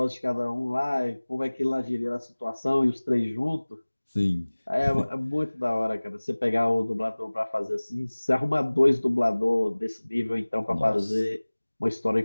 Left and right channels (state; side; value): inverted; both; correlation -1.00